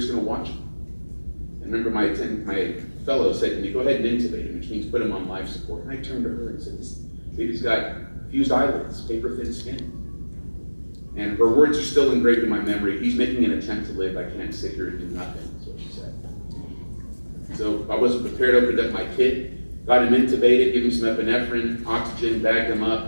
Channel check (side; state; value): both; inverted; correlation -1.00